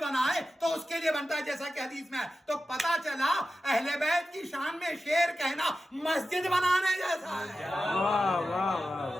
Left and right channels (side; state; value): both; normal; correlation 0.93